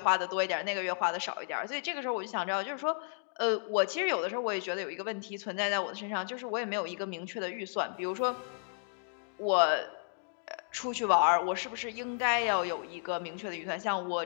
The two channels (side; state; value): right; silent; digital silence